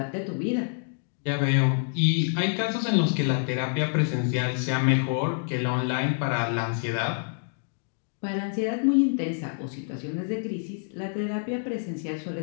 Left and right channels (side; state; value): right; silent; digital silence